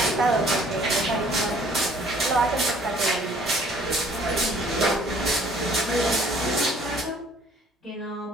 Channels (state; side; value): normal; both; correlation 0.57